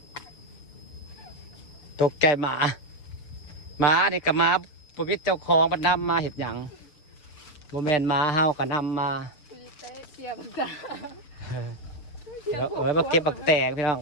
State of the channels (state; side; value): late; right; 6.9 ms